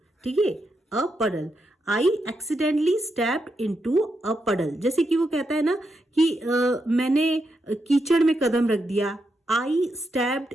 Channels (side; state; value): both; normal; correlation 0.83